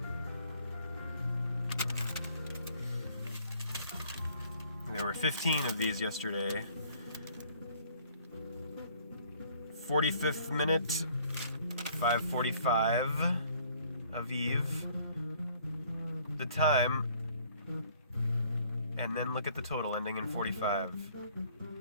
There were 15 of these yesterday. 45th minute, 5:45 Aviv. The time, and then look at the total ending in 45.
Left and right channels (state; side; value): inverted; both; correlation -0.58